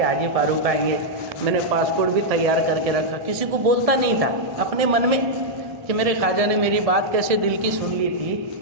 حاجی فاروق آئیں گے۔ میں نے پاسپورٹ بھی تیار کر کے رکھا، کسی کو بولتا نہیں تھا، اپنے من میں کہ میرے خواجہ نے میری بات کیسے دل کی سن لی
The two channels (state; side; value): late; left; 1.7 ms